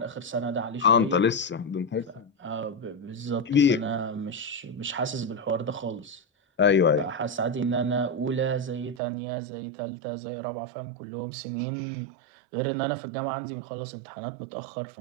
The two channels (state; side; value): drops out; left; at 9.0 s